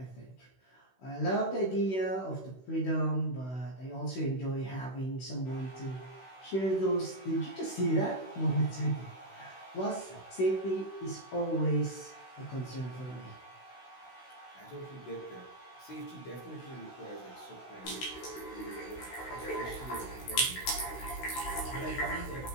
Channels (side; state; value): right; late; 16 ms